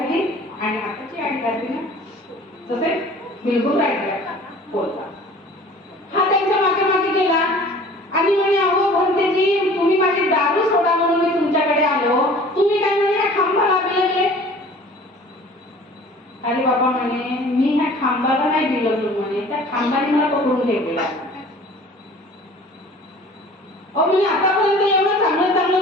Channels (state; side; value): normal; both; correlation 0.47